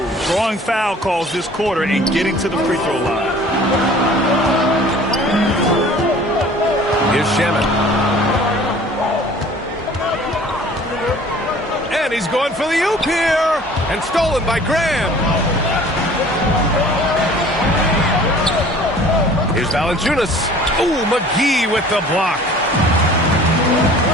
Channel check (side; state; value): both; normal; correlation 0.48